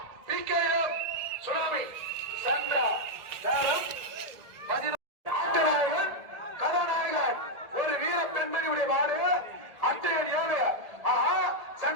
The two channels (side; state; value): left; late; 1.7 ms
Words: பிகேஎம் சுனாமி சந்திரா ஆட்டநாயகன் கதாநாயகன் ஒரு வீர பெண்மணியுடைய மாடு அட்டையன் 7 ஆஹா